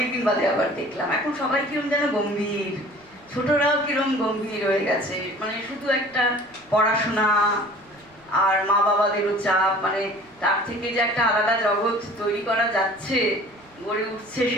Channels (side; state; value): right; noise; rumble, 30 dB below the sound